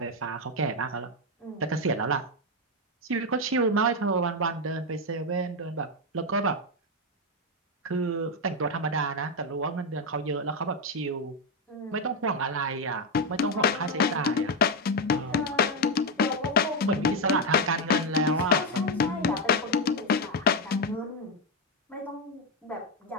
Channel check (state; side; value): normal; both; correlation 0.06